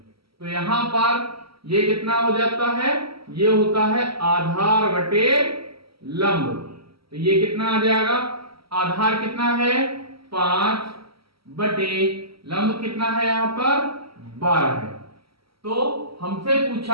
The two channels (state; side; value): late; left; 0.75 ms